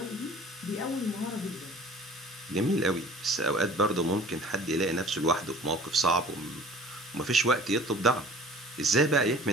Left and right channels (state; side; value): normal; both; correlation 0.47